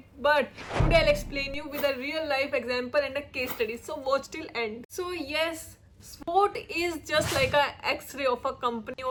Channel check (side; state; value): both; identical; correlation 1.00